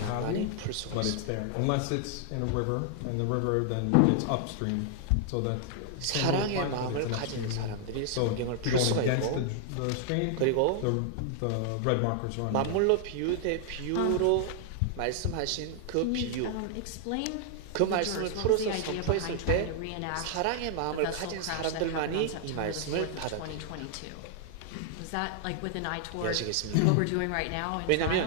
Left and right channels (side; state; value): both; different; correlation 0.00